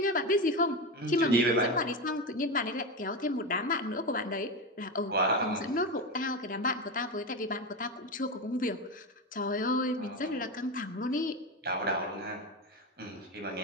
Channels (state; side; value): normal; both; correlation 0.17